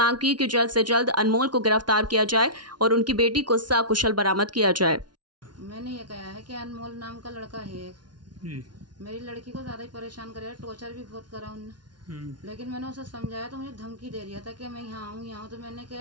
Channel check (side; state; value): left; late; 0.70 ms